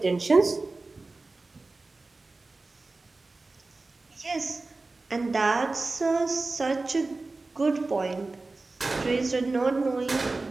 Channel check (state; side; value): quieter; left; 3.4 dB